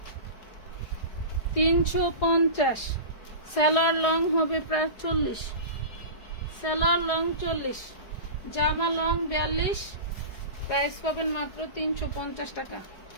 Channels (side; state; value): right; late; 4.8 ms